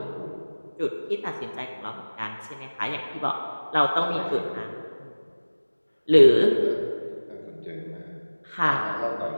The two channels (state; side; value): inverted; both; correlation -1.00